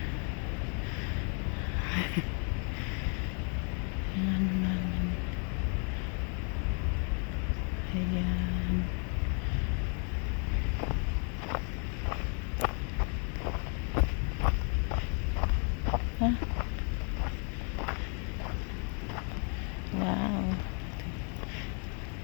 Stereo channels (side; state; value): right; quieter; 39.6 dB